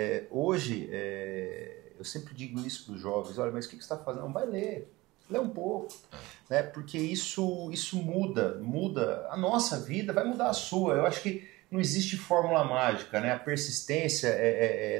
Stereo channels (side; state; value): left; quieter; 20.5 dB